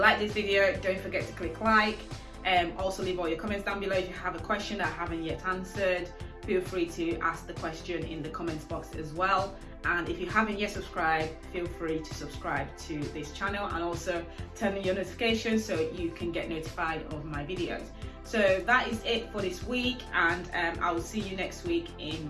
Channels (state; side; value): identical; both; correlation 1.00